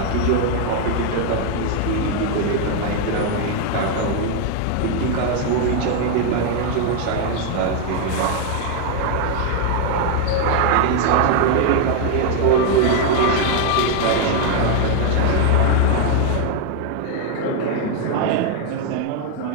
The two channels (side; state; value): both; different; correlation 0.01